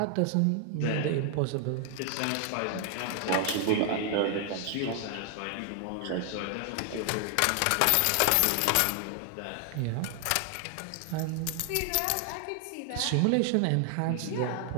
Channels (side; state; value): both; different; correlation 0.00